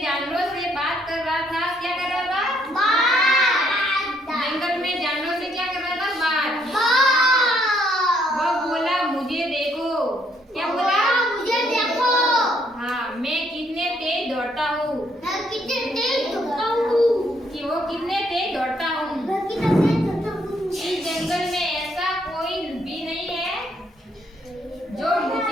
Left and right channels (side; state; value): both; normal; correlation 0.70